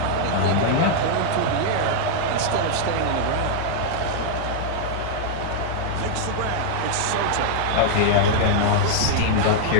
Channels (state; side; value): different; both; correlation -0.01